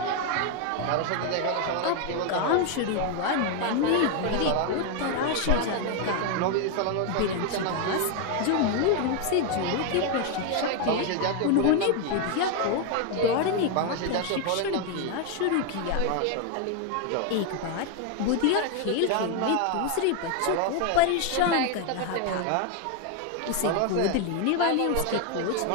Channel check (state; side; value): different; both; correlation 0.01